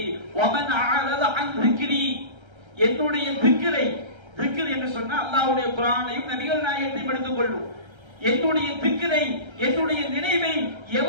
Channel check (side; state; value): left; late; 1.3 ms